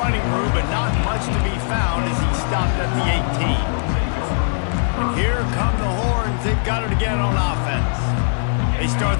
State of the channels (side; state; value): right; silent; 59 dB below the other